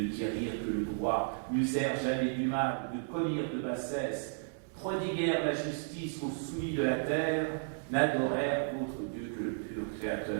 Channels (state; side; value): silent; left; digital silence